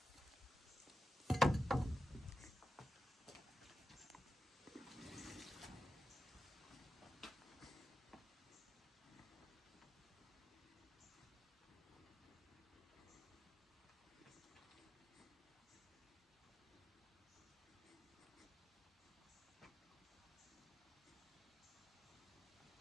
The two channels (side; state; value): both; normal; correlation 0.91